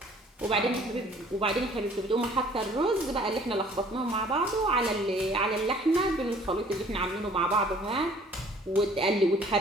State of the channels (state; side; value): normal; both; correlation 0.55